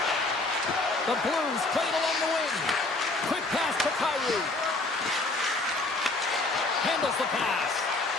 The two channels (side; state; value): right; quieter; 3.1 dB